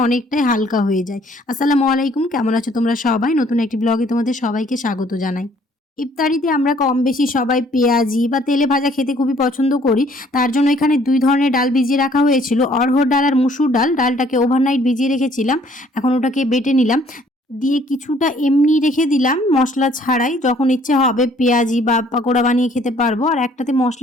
অনেকটাই হালকা হয়ে যায়। আসসালামু আলাইকুম, কেমন আছো তোমরা সবাই? নতুন একটি ব্লগে তোমাদের সবাইকে স্বাগত জানাই। ইফতারিতে আমরা কম বেশি সবাই পেঁয়াজি বা তেলে ভাজা খেতে খুবই পছন্দ করি। তার জন্য এখানে ২ ধরনের ডাল ভিজিয়ে রাখা হয়েছিল। অড়হর ডাল আর মুসুর ডাল। ডালটাকে ওভারনাইট ভিজিয়ে রেখেছিলাম। এখন ওটাকে বেটে নিলাম। দিয়ে কিছুটা এমনি রেখে দিলাম মসলা ছাড়াই। যখন ইচ্ছে হবে পেঁয়াজি বা পাকোড়া বানিয়ে খেতে পারবো। আর একটাতে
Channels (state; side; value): normal; both; correlation 0.60